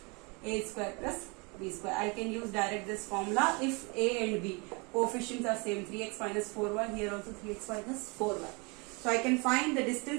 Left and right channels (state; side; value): quieter; left; 29.9 dB